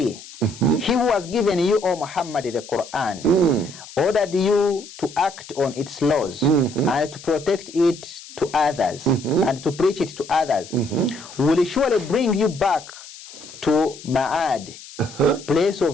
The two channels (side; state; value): left; noise; hiss, 17 dB below the sound